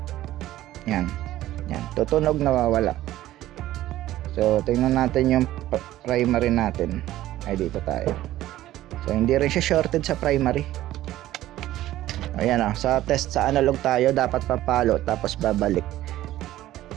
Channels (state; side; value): quieter; left; 14.6 dB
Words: Yan, tutunog, nawawala. So tingnan natin yung primary natin. Ay, dito tayo. So hindi rin siya shorted sa primary. Ayan sa test sa analog tayo, dapat papalo tapos babalik.